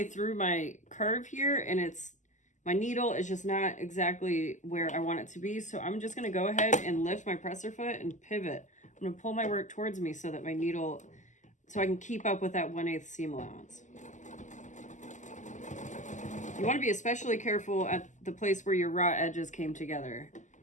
through my curve here, and my needle is just not exactly where I want it to be. So I'm just gonna go ahead and lift my presser foot and pivot. I'm gonna pull my work towards me so that my needle, so I can keep up with that 1/8 seam allowance. You want to be especially careful at the place where your raw edges came together,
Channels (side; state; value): right; late; 0.36 ms